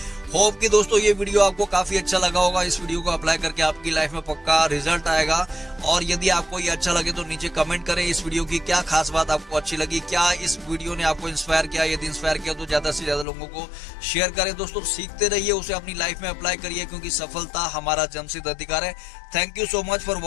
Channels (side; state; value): right; drops out; at 13.2 s